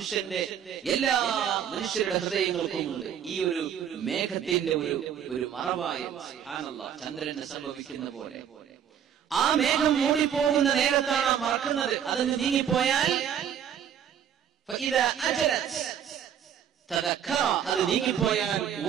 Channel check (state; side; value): quieter; left; 9.0 dB